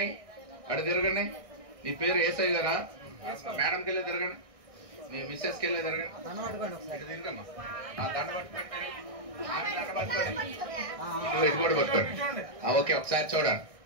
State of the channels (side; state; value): left; late; 1.6 ms